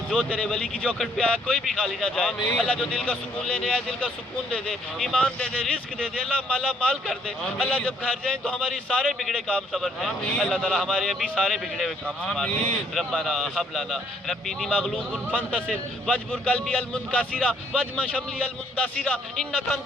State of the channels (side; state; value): both; normal; correlation 0.65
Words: جو تیرے ولی کی چوکھٹ پہ آیا کوئی بھی خالی نہ جائے، اللہ جو دل کا سکون لینے آئے دل کا سکون دے دے، ایمان دے دے، رزق دے دے، اللہ مالا مال کر دے، اللہ جب گھر جائیں تو ہماری سارے بگڑے کام سنور جائیں، اللہ تعالیٰ ہمارے ابھی سارے بگڑے ہوئے کام سنوار دے، ربنا حب لنا ربی انی مغلوب فانتصر واجبر قلبی المنکسرا واجمع شملی المندثرا انک